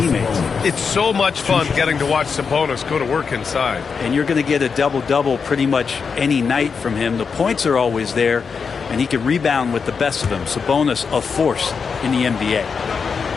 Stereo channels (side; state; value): right; quieter; 5.7 dB